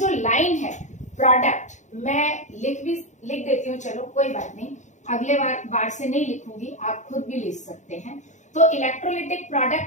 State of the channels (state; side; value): late; right; 0.35 ms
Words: लाइन है प्रोडक्ट, मैं लिख देती हूँ, चलो कोई बात नहीं, अगले बार से नहीं लिखूंगी, आप खुद भी लिख सकते हैं। तो इलेक्ट्रोलिटिक